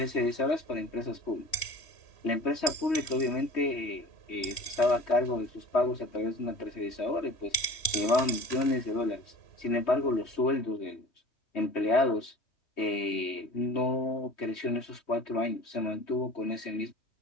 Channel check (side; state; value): right; late; 3.0 ms